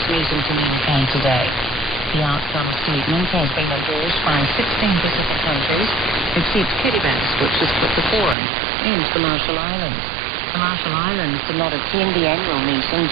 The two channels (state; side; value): drops out; left; at 8.3 s